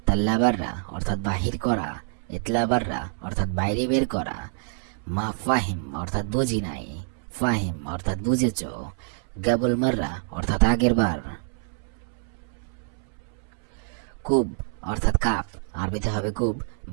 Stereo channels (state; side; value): silent; left; 61 dB below the other